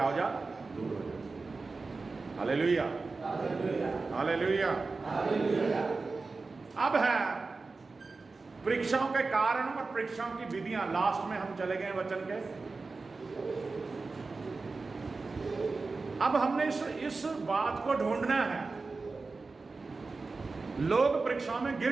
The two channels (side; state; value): left; quieter; 3.9 dB